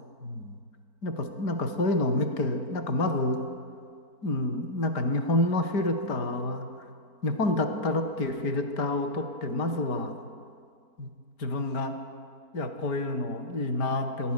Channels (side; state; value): right; late; 4.4 ms